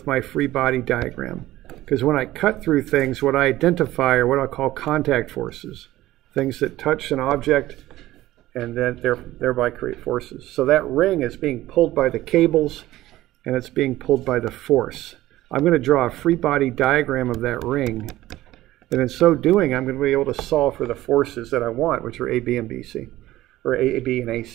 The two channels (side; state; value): left; quieter; 15.8 dB